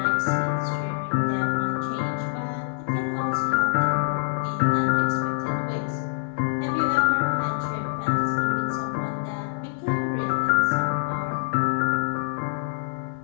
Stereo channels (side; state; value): right; silent; digital silence